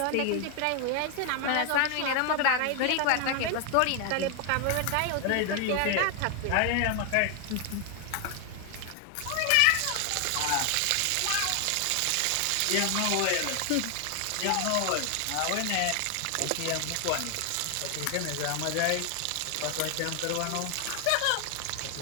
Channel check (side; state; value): both; different; correlation 0.00